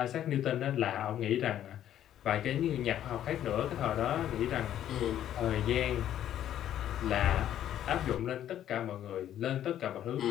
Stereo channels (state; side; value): quieter; right; 11.2 dB